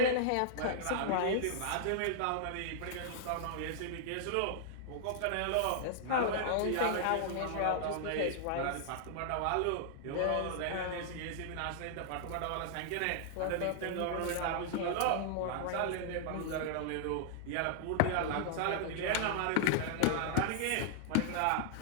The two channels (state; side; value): different; both; correlation -0.01